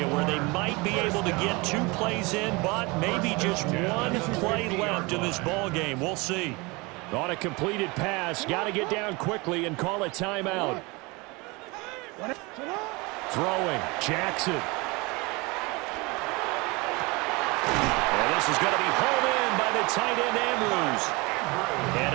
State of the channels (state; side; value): quieter; left; 25.7 dB